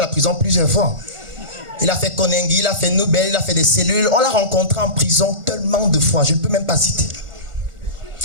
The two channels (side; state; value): left; late; 1.4 ms